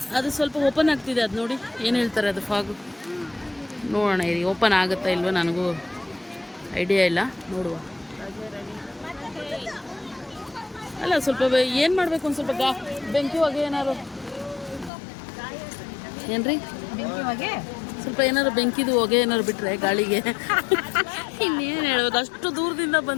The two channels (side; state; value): right; drops out; at 14.9 s